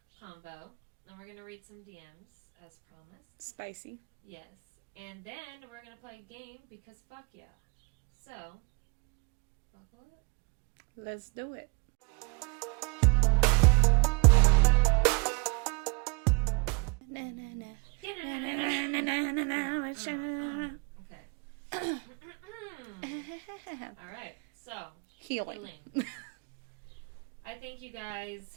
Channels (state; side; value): quieter; left; 31.7 dB